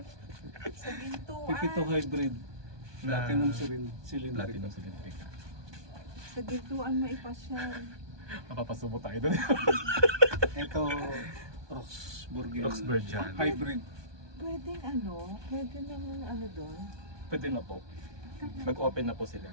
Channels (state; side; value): late; left; 1.2 ms